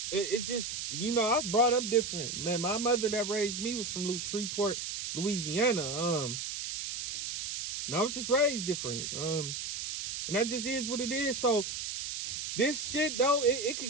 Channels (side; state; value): right; noise; hiss, 5 dB below the sound